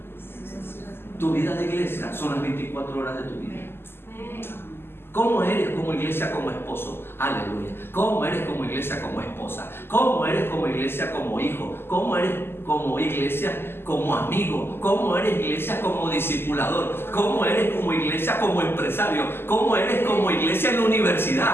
Tu vida de iglesia son las 24 horas de tu vida. ¿Cómo eres como iglesia, como esposo? Aleluya. ¿Cómo eres como iglesia, como esposa? ¿Cómo eres como iglesia, como hijo? ¿Cómo eres como iglesia, como amigo? ¿Cómo eres iglesia, como discipulador? ¿Cómo eres como iglesia, como empresario? ¿Cómo eres como iglesia en la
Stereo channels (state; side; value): late; right; 0.11 ms